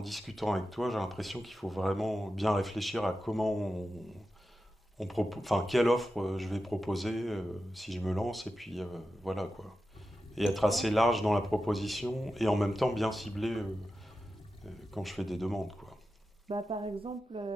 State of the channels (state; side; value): normal; both; correlation 0.91